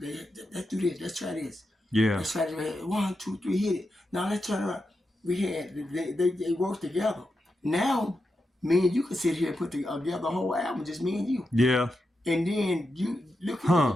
let's try this. Yeah. Let's try this. 1, 2, 3, hit it. Now let's turn around. We had, they worked together. Now, me and you can sit here and put together the whole album, just me and you. Yeah. And then you look at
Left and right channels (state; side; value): normal; both; correlation 0.88